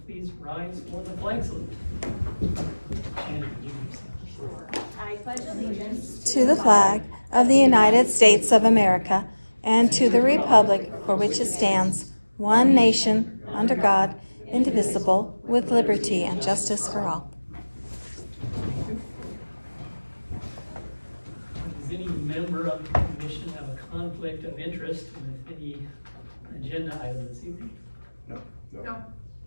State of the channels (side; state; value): both; inverted; correlation -1.00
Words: please rise for the flag salute? Shannon, would you please? I pledge allegiance to the flag of the United States of America and to the republic for which it stands, one nation, under God, indivisible, with liberty and justice for all. Does any member of the commission have a conflict of interest with any agenda item this evening? No.